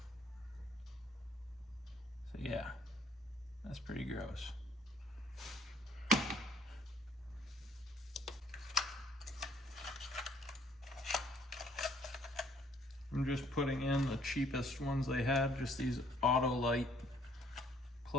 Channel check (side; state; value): both; normal; correlation 0.62